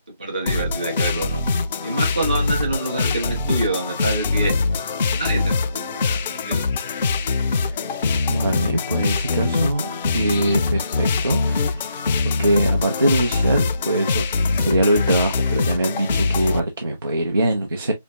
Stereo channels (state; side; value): inverted; both; correlation -0.77